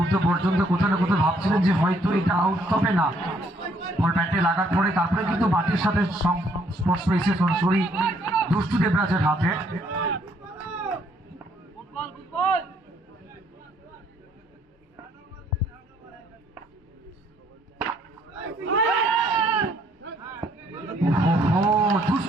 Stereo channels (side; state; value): both; normal; correlation 0.67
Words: পর্যন্ত কোথাও না কোথাও ভাবছিলেন যে হয়তো এটা আউট হবে না। বল ব্যাটে লাগার পরে তারপরে কিন্তু মাটির সাথে স্পর্শ পেয়েছে সরাসরি দুষ্টু দেবরাজের হাতে।